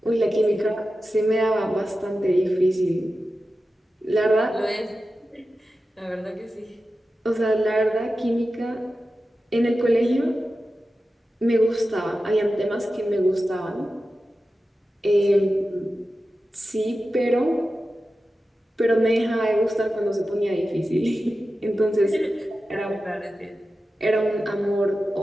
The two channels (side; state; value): both; normal; correlation 0.93